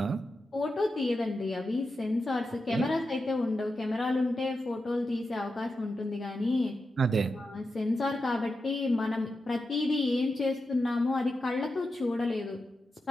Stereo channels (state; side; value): normal; both; correlation 0.89